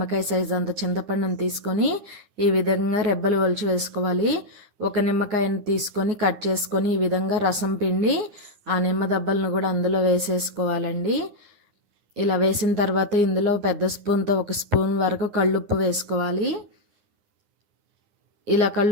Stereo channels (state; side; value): late; left; 9.7 ms